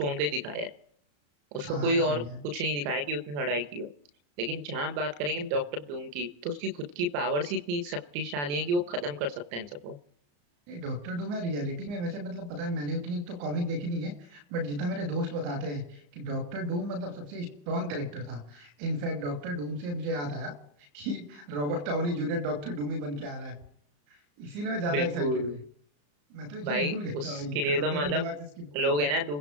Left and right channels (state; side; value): late; left; 34 ms